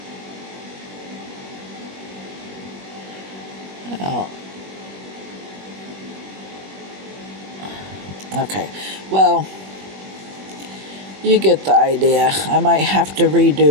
Oh. Okay, well, you get the idea. I might have to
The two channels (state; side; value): late; left; 21 ms